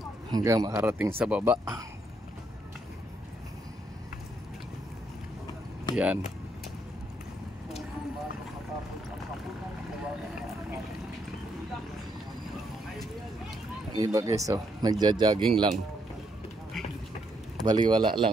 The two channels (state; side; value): normal; both; correlation 0.75